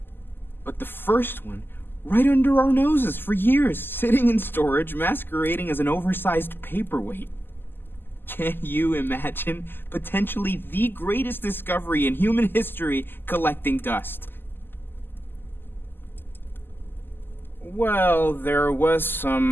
But the first one, right under our noses for years, sitting in storage, masquerading as an oversized paperweight. Can you imagine potentially the greatest discovery in human history collecting dust? Well, there was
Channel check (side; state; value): right; late; 0.096 ms